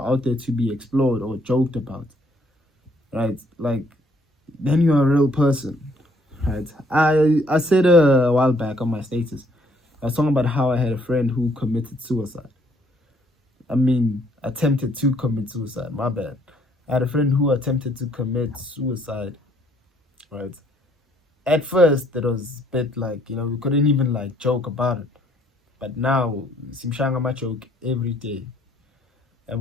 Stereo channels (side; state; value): both; normal; correlation 0.65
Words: out there to be explored or joked about, right? Like, then you're a real person, right? I said a while back on my status, I was talking about how I had a friend who committed suicide. Attempted to commit suicide. My bad. I had a friend who attempted to commit suicide, right? At first, it was a bit like, we couldn't even like joke about it. But now, simshanga my joke every day. And